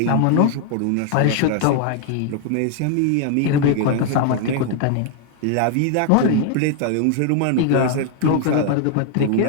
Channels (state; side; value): different; both; correlation 0.00